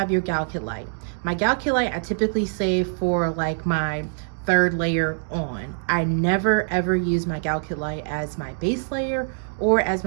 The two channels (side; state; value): left; silent; digital silence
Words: your Galkit. My Galkit I typically save for like my third layer on. I never ever use my Galkit as my base layer or as